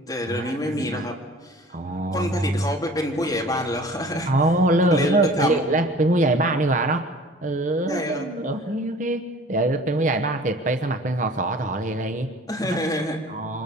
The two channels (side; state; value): both; normal; correlation 0.46